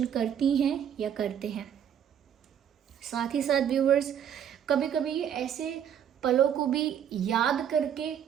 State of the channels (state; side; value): quieter; left; 9.0 dB